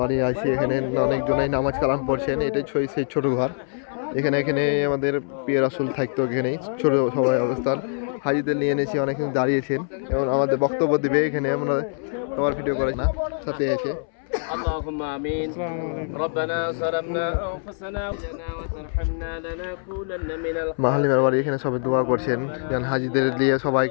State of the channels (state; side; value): silent; right; 63 dB below the other